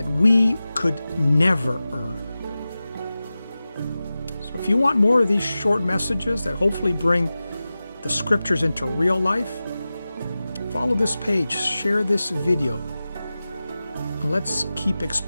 we could never earn. So if you want more of these short messages that hopefully bring the scriptures into real life, follow this page, share this video, and let's keep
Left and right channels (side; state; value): both; inverted; correlation -0.95